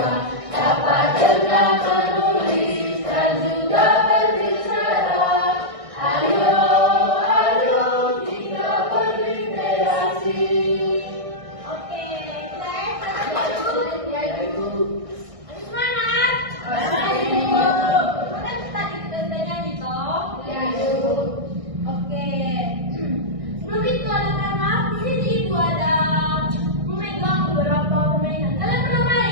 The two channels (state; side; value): late; left; 1.6 ms